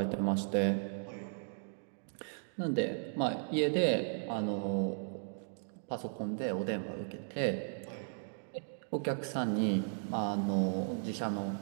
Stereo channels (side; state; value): left; silent; digital silence